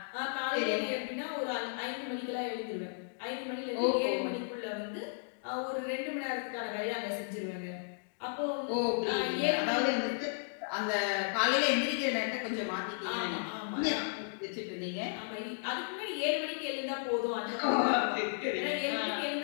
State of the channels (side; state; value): right; silent; digital silence